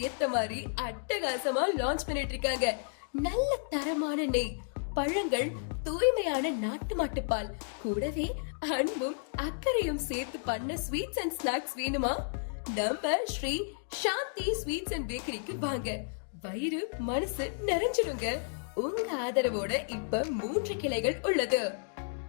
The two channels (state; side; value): silent; right; digital silence